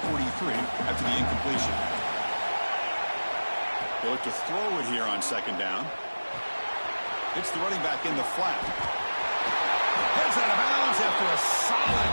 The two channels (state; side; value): inverted; both; correlation -1.00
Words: 43 after the incompletion. They look to throw it here on second down. It's the running back in the flat. Heads out of bounds after a solid